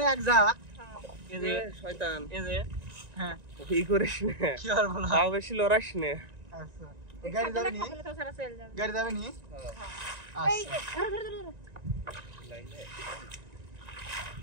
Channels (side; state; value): left; late; 1.9 ms